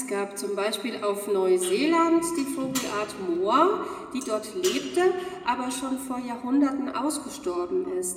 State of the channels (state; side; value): identical; both; correlation 1.00